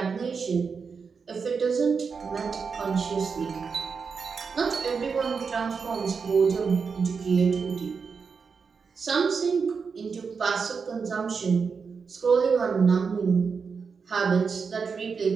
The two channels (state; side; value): quieter; left; 5.5 dB